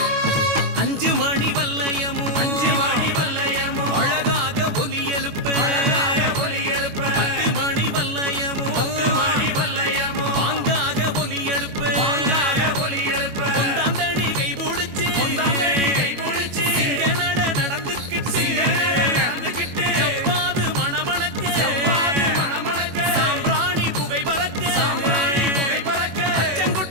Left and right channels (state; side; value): late; left; 21 ms